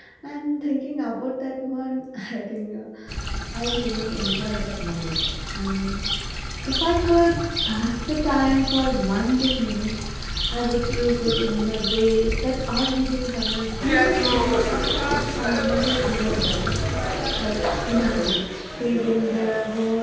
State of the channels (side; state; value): both; identical; correlation 1.00